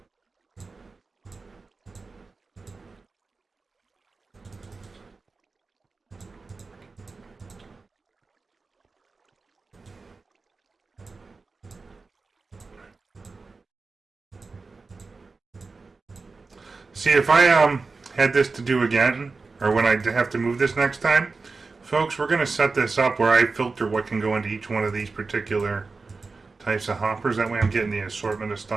See, if I had this to do again, or when I have to move this next time, folks, we're going to set this up where I filter what can go into each one of these particular types of hoppers. That way I'm getting the assortment of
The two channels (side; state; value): left; quieter; 4.1 dB